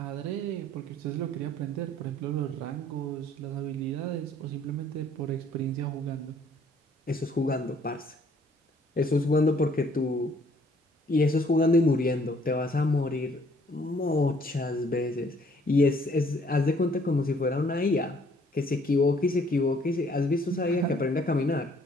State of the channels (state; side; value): normal; both; correlation 0.61